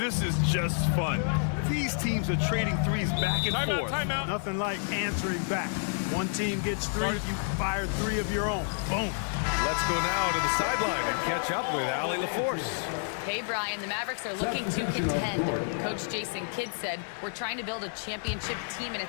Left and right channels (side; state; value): right; silent; 58 dB below the other